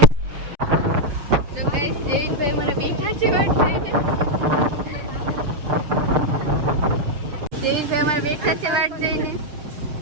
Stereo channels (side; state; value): left; late; 6.6 ms